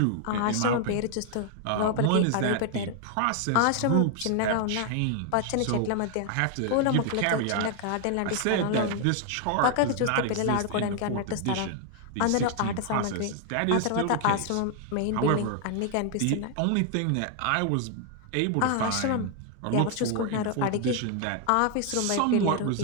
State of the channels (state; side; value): different; both; correlation 0.00